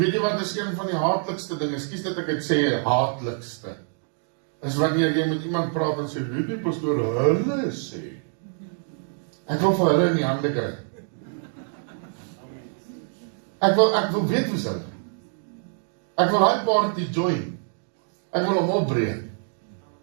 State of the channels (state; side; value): silent; left; digital silence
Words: jy wat is een van die haatlikste dinge, ekskuus dat ek dit sê, haatlikste, is wanneer jy met iemand praat en sê, weet jy pastoor, hulle sê. Ek wil vir hulle in die hande kry. Ek wil weet hoe hulle. Ek wil hy party join. Ek wil hom opbreek.